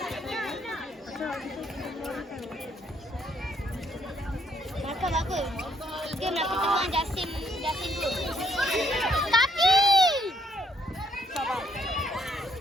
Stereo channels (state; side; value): normal; both; correlation 0.70